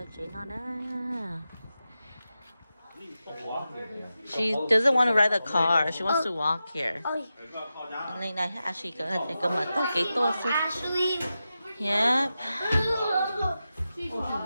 最闹呢。She doesn't want to ride the car. She wants to walk here. Lên này Ashley có thể cầm mặt tao cái to số. Yep.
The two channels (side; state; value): both; inverted; correlation -0.91